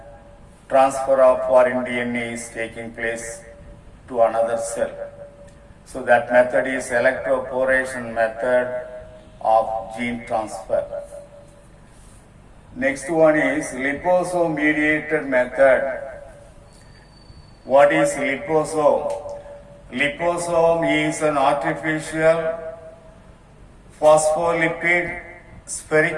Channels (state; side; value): identical; both; correlation 1.00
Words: transfer of foreign DNA is taking place to another cell. So that method is electroporation method of gene transfer. Next one is liposome mediated method. What is liposome? Liposome is an artificial phospholipid